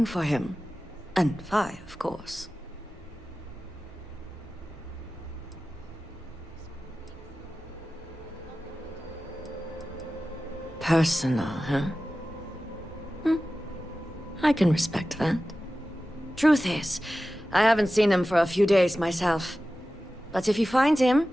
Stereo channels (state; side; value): normal; both; correlation 0.95